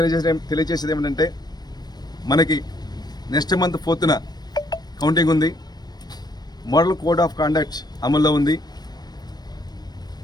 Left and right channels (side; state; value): right; late; 0.19 ms